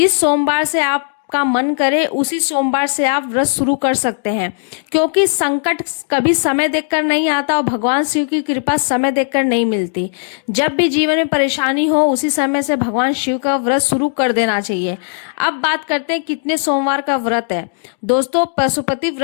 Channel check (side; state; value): right; silent; digital silence